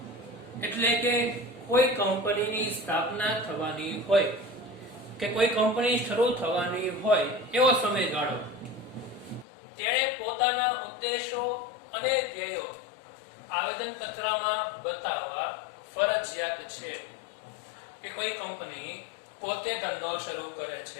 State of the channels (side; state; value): right; drops out; at 9.5 s